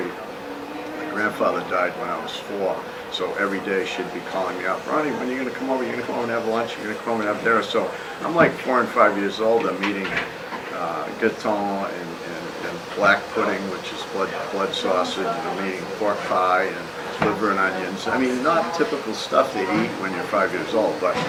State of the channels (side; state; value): both; identical; correlation 1.00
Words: My grandfather died when I was 4, so every day she'd be calling me up, Ronnie, when are you going to come over? You're going to come over and have lunch? You're going to come over and have dinner? So I'm like 4 and 5 years old. I'm eating gâteau and black pudding, which is blood sausage, and I'm eating pork pie and liver and onions. I mean, not typical stuff they eat when you're 5 years old, but,